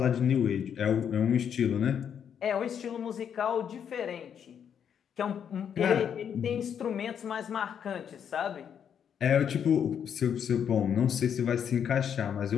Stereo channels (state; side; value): quieter; right; 8.2 dB